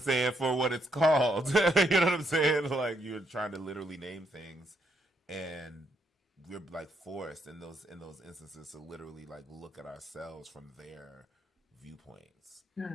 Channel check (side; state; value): both; normal; correlation 0.76